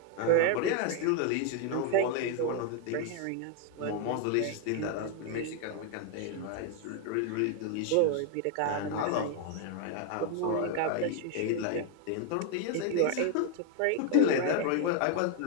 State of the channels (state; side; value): different; both; correlation 0.01